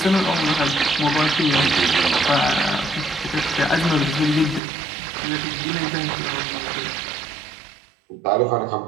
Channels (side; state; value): left; drops out; at 4.6 s